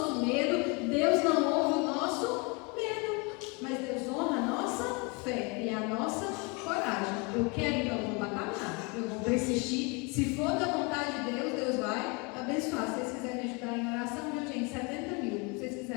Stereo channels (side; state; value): right; quieter; 30.1 dB